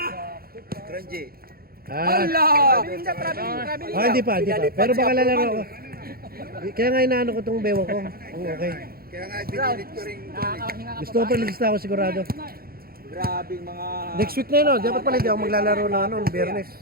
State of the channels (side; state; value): left; late; 0.44 ms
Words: Tranji. Hindi pa. Pero baka lalaro ako. Kaya nga inaano ko itong bewa ko. Okay. Kaya nga binilit ko rin. Gusto ko pa lista ako sigurado. Grabing mga... Next week na yun, dapat pala hindi ako maglalaro na ano, Biyernes.